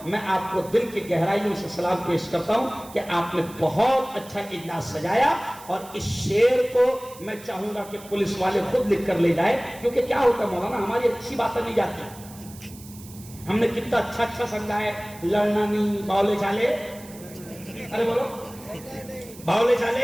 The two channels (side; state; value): right; noise; hiss, 19 dB below the sound